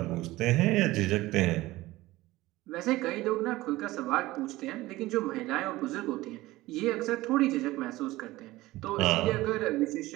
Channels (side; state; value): left; quieter; 18.2 dB